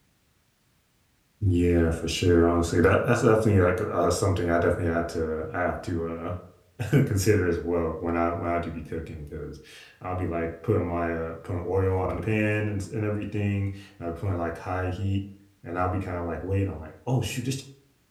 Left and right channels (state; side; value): identical; both; correlation 1.00